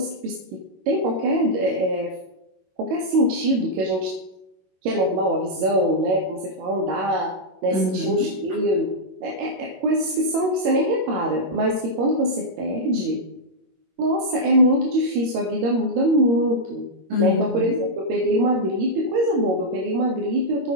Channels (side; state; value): left; late; 21 ms